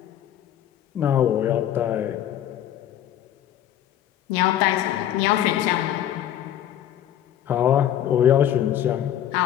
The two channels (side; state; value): right; quieter; 11.2 dB